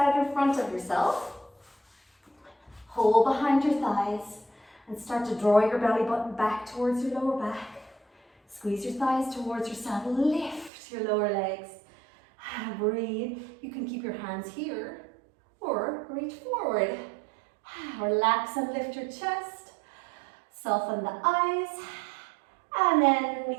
in front of yourself. Hold behind your thighs and start to draw your belly button back towards your lower back. Squeeze your thighs towards yourself. Lift your lower legs. Breathe. You can keep your hands here or reach forward. Relax and lift your chest. Soften the eyes. And then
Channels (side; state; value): left; drops out; at 10.7 s